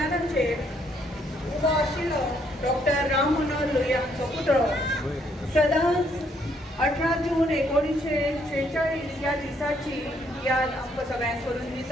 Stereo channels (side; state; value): both; normal; correlation 0.70